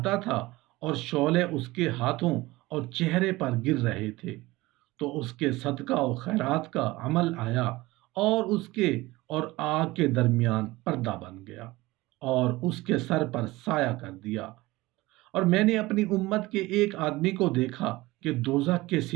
تھا اور شعلے اس کے ہاتھوں اور چہرے پر گر رہے تھے، تو اس کے صدقہ و خیرات کا عمل آیا اور اس کے اور آگ کے درمیان پردہ بن گیا اور اس کے سر پر سایہ کر دیا۔ اور میں نے اپنی امت کے ایک آدمی کو دیکھا کہ دوزخ کے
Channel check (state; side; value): quieter; left; 19.8 dB